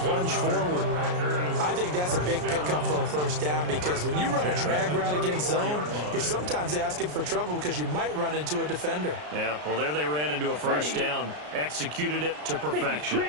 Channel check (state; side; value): late; left; 33 ms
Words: forward. I think that's a big pickup for a first down because when you run a drag route against zone, you're sometimes asking for trouble because you might run into a defender. Yeah, well, there they ran into a first down. Executed it to